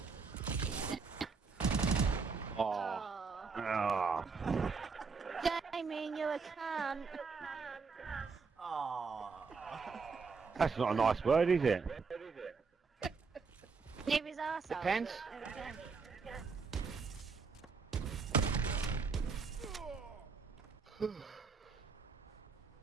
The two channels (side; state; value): left; quieter; 4.9 dB